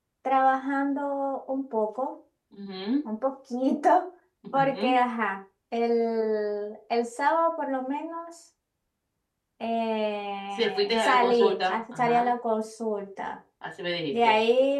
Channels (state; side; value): identical; both; correlation 1.00